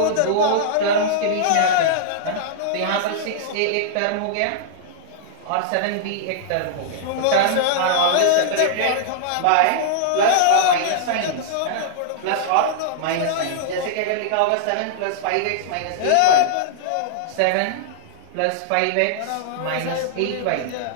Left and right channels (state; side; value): different; both; correlation -0.01